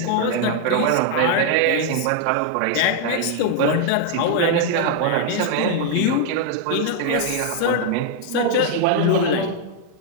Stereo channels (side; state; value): both; different; correlation 0.00